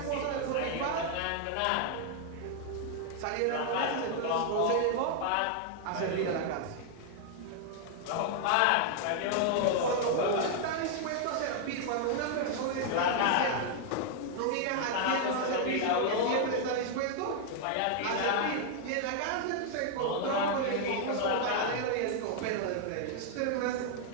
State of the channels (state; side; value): different; both; correlation 0.00